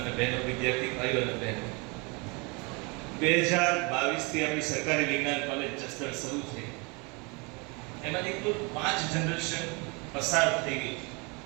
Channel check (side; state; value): left; quieter; 29.9 dB